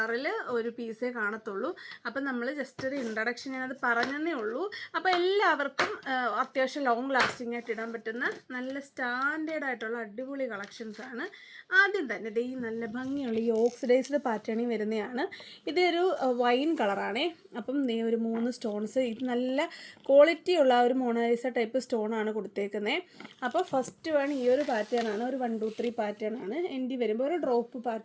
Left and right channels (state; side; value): identical; both; correlation 1.00